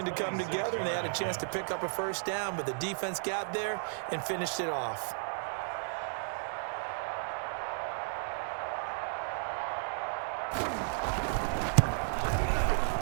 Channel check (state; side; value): silent; left; digital silence